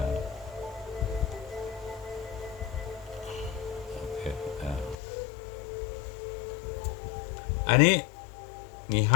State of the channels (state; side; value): drops out; right; at 5.0 s